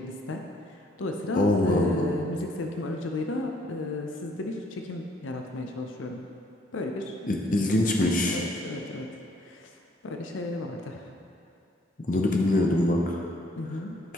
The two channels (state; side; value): normal; both; correlation 0.65